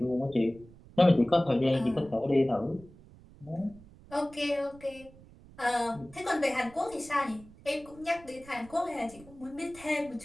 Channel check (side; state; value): right; noise; rumble, 22 dB below the sound